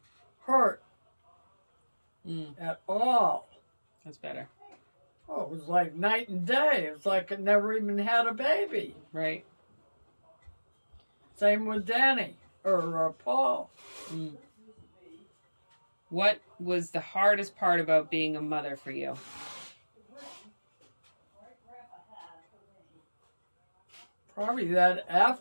hurt Mm, at all. that's better. Oh, it was like night and day. It was like I never even had a baby. Right. Same with Danny or Paul. Mm. What was the hardest part about being a mother for you? Probably that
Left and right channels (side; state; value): both; inverted; correlation -1.00